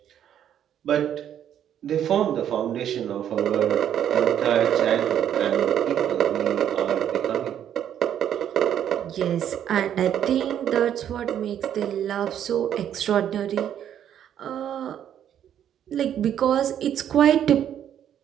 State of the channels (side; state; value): left; quieter; 9.9 dB